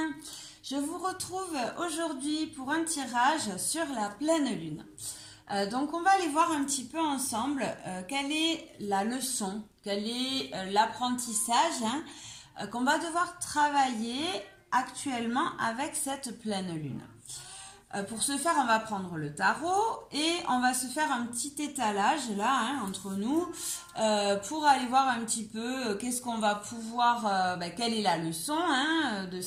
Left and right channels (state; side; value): identical; both; correlation 1.00